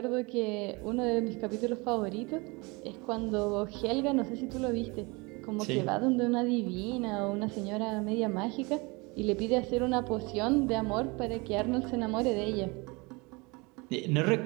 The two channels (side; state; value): left; quieter; 26.8 dB